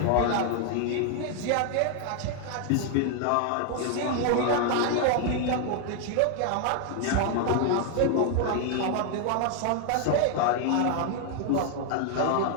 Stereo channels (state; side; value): different; both; correlation 0.00